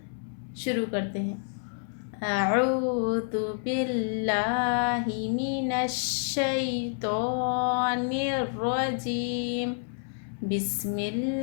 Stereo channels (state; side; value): silent; right; 59 dB below the other